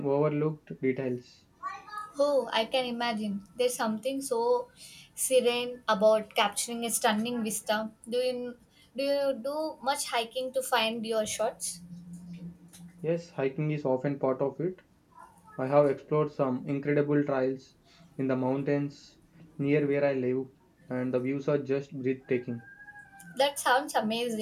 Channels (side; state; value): both; identical; correlation 1.00